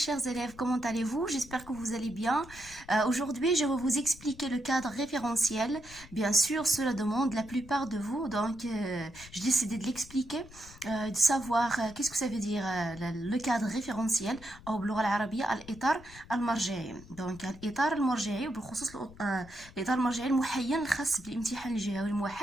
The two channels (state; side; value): noise; left; rumble, 19 dB below the sound